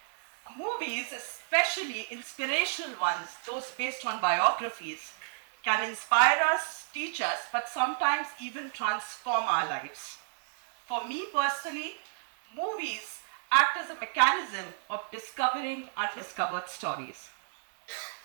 Movies, especially inspirational ones, those based on biographies, can inspire us, teach us, but sometimes even transform our lives. For me personally, movies act as a mechanism of discovering undiscovered stories.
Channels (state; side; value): silent; left; 57 dB below the other